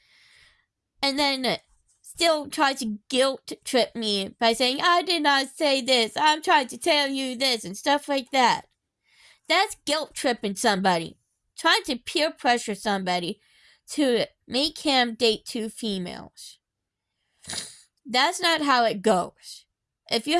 and then still tried to guilt trip me by saying I did not say this, I'm trying to tell you this and stuff like that. That's guilt tripping somebody. Trying to peer pressure somebody to make him date 2 females. That's not how it goes. If you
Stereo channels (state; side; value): identical; both; correlation 1.00